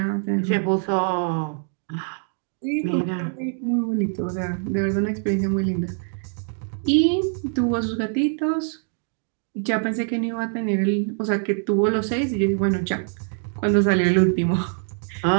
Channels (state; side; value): silent; left; 58 dB below the other